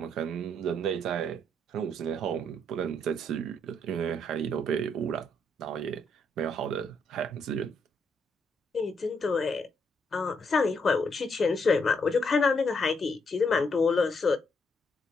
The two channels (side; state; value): both; normal; correlation 0.74